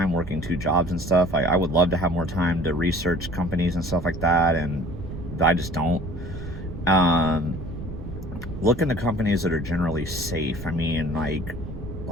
working 2 jobs and stuff. I would love to have more time to research companies and stuff like that, and I just don't. Look into companies that are generally safe. I mean, like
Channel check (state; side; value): noise; right; rumble, 10 dB below the sound